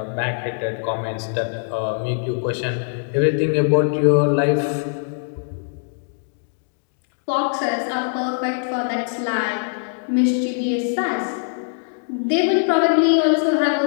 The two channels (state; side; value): silent; right; digital silence